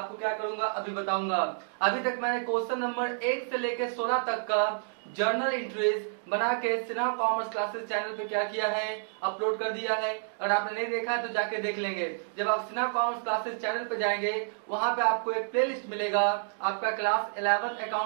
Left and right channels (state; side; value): silent; left; digital silence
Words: क्या करूंगा अभी बताऊंगा। अभी तक मैंने क्वेश्चन नंबर 1 से लेकर 16 तक का जर्नल एंट्रीज बना के सिन्हा कॉमर्स क्लासेस चैनल पे क्या किया है, अपलोड कर दिया है। अगर आपने नहीं देखा है तो जाके देख लेंगे। जब आप सिन्हा कॉमर्स क्लासेस चैनल पे जाएंगे वहां पे आपको एक प्लेलिस्ट मिलेगा, आपका class 11